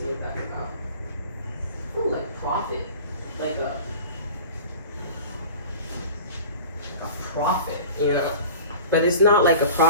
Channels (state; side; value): inverted; both; correlation -0.40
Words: what that's about. I feel like prophet. like a prophet, you know. But it's not like a